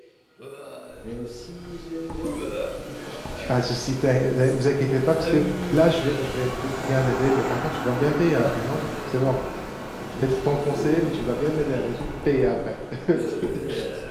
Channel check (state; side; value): identical; both; correlation 1.00